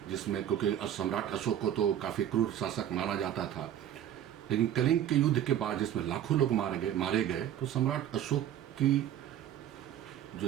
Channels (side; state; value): left; quieter; 10.8 dB